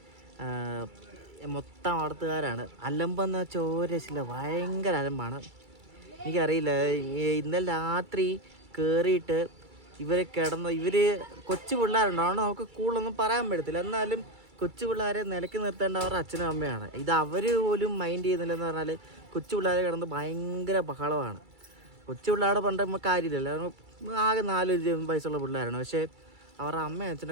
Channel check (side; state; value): left; late; 2.3 ms